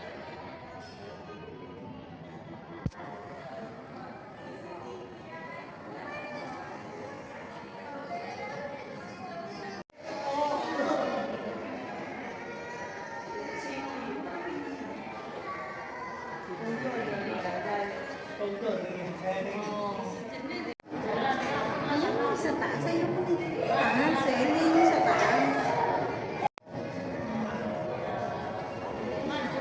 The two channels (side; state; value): both; identical; correlation 1.00